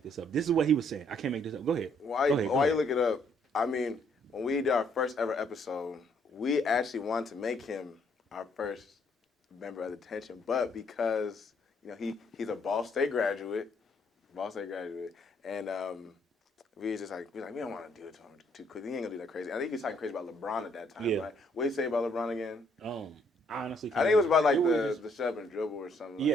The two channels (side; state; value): both; normal; correlation 0.68